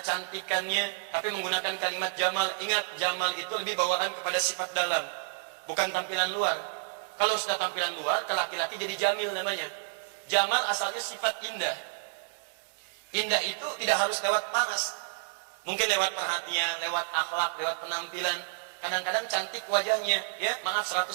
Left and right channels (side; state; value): left; silent; digital silence